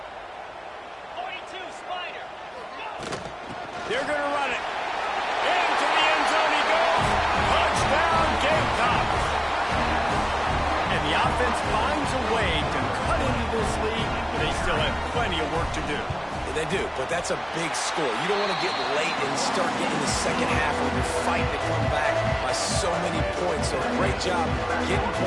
42, Spider. They're going to run it. Into the end zone he goes. Touchdown, Gamecocks. And the offense finds a way to cut into this lead, but they still have plenty of work to do. They do, but that's a big score. You don't want to get late and start getting the second half when you're fighting to come back by so many points. So great job getting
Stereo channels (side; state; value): both; identical; correlation 1.00